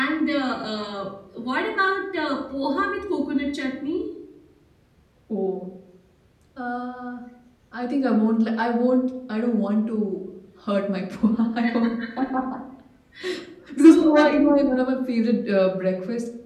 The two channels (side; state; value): both; identical; correlation 1.00